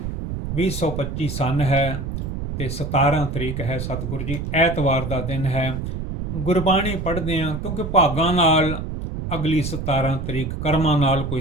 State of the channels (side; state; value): right; noise; rumble, 5 dB below the sound